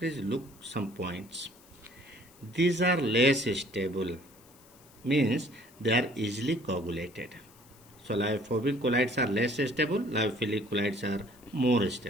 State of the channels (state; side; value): noise; left; hiss, 26 dB below the sound